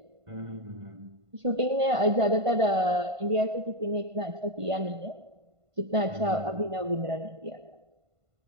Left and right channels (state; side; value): late; left; 1.5 ms